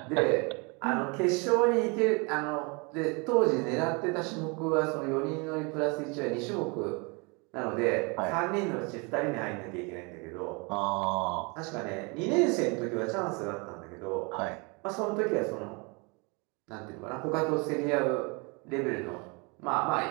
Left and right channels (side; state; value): left; quieter; 30.6 dB